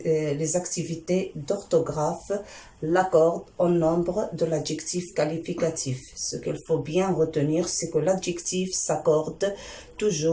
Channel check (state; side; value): identical; both; correlation 1.00